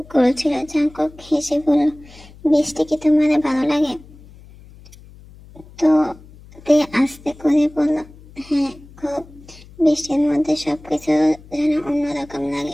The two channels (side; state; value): left; noise; hum, 22 dB below the sound